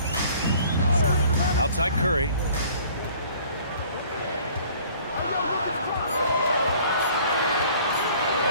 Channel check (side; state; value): both; inverted; correlation -0.53